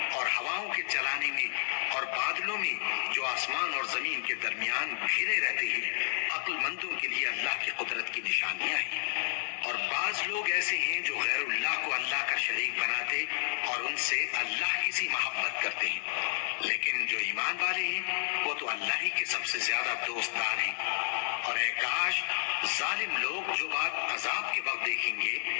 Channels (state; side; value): silent; right; digital silence